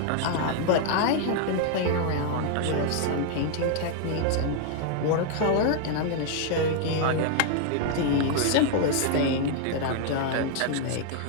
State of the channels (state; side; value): different; both; correlation 0.00